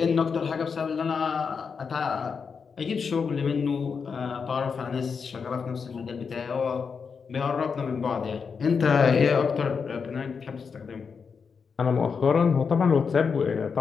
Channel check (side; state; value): right; quieter; 5.8 dB